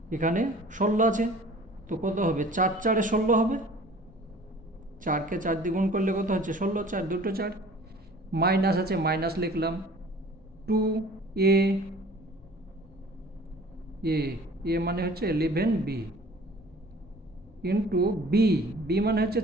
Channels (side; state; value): both; normal; correlation 0.48